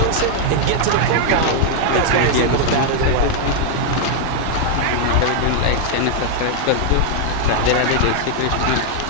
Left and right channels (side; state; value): both; different; correlation 0.00